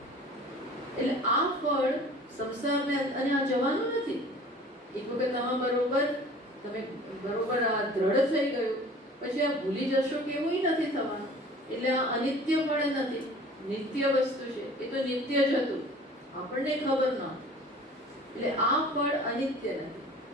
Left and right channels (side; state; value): both; normal; correlation 0.46